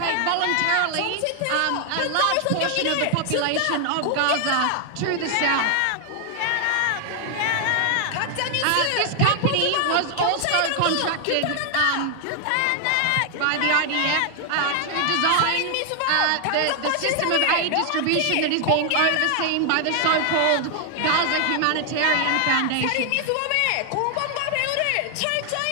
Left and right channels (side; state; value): both; different; correlation 0.00